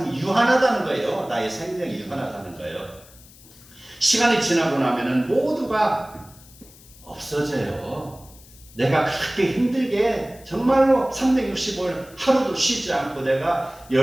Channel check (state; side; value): noise; left; hiss, 23 dB below the sound